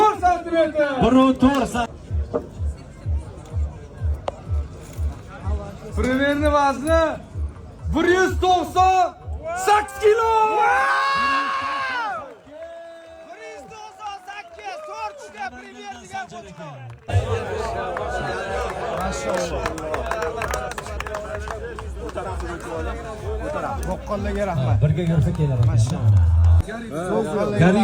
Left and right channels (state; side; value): identical; both; correlation 1.00